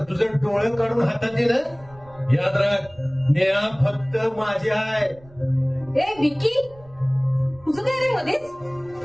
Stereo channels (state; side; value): noise; right; rumble, 25 dB below the sound